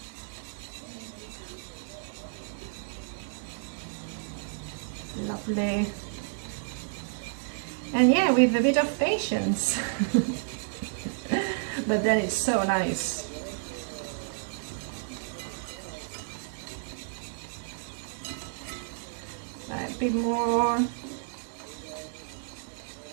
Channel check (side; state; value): left; silent; digital silence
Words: Lovely. And yeah, with a bit of patience. But then it's so nice. A bit more.